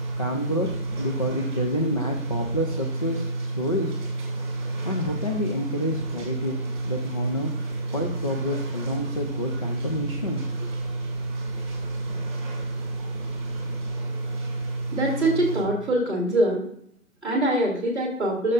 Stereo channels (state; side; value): normal; both; correlation -0.17